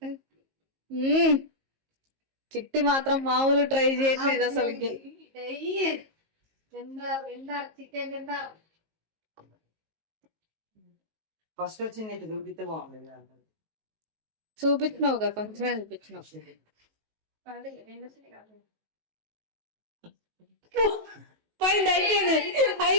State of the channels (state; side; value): late; left; 19 ms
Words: చిట్టి మాత్రం మామూలు ట్రై చేయట్లేదు అసలుకి. ఫస్ట్ వచ్చింది చూపిస్తే బాగుంది. చూపించినావుగా, కొంచెమే చూపించినావు. పోయింది,